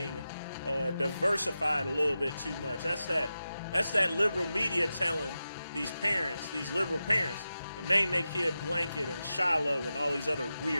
diversified a little bit too much. That's that liberal media telling these parents, these liberal parents, to name their kid Blanket and Shiloh and all these other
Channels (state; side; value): inverted; both; correlation -0.92